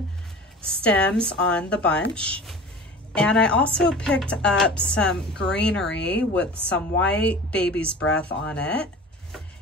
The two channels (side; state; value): both; normal; correlation 0.38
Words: stems on the bunch. And I also picked up some greenery with some white baby's breath on it.